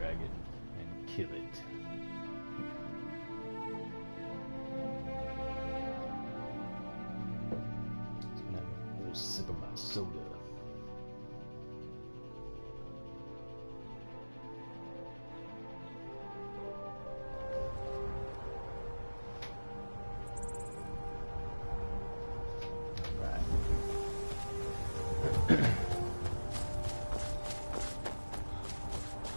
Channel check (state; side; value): inverted; both; correlation -1.00